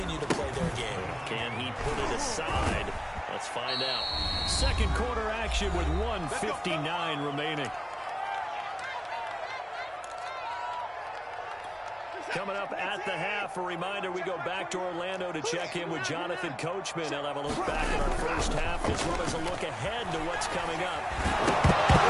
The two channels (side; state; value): both; identical; correlation 1.00